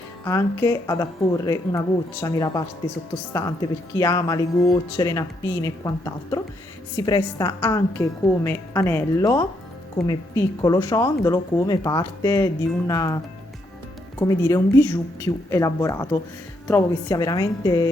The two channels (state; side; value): normal; both; correlation 0.76